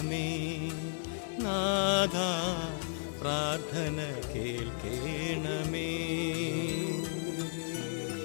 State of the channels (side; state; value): right; silent; digital silence